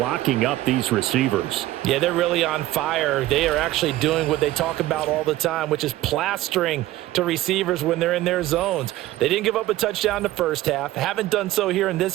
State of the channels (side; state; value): left; quieter; 15.8 dB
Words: up these receivers. Yeah, they're really on fire. They are actually doing what they talk about all the time, which is plastering to receivers when they're in their zones. They didn't give up a touchdown in the first half. Haven't done so here in this